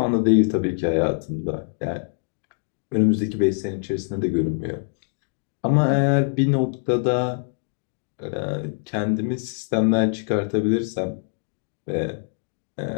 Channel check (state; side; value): silent; right; digital silence